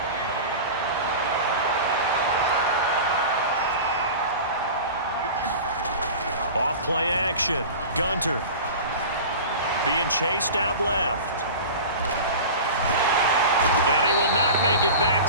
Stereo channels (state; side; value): inverted; both; correlation -0.34